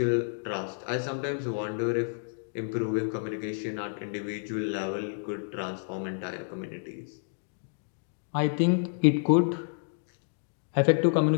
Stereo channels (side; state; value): right; silent; digital silence